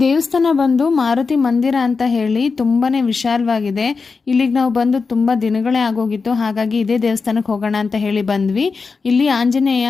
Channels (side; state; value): right; quieter; 4.7 dB